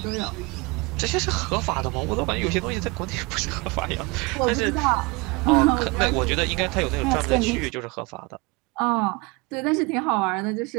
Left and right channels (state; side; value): quieter; left; 26.7 dB